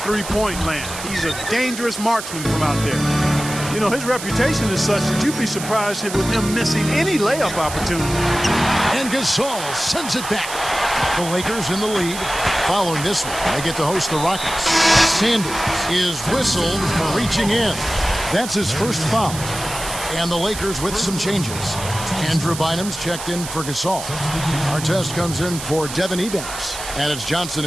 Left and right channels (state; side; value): noise; right; hiss, 9 dB below the sound